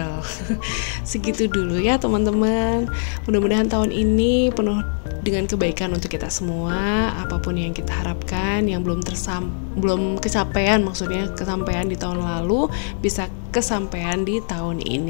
Segitu dulu ya teman-teman. Mudah-mudahan tahun ini penuh dengan kebaikan untuk kita semua. Apapun yang kita harapkan yang belum kesampaian, maksudnya kesampaian di tahun lalu bisa kesampaian di tahun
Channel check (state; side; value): silent; right; digital silence